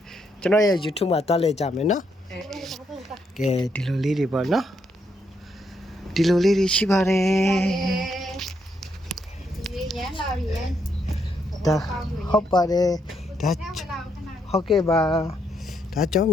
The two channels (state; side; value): normal; both; correlation 0.77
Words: ကျွန်တော်ရဲ့ YouTube မှာတွားလဲကြမယ်နော်ကဲဒီလိုလေးတွေပေါ့နော်ဒီလိုလေးတွေရှိပါတယ်ဒီရမ်းလာပြီဒါဟုတ်ပါတယ်ဒါဟုတ်ကဲ့ပါဒါကြောင့်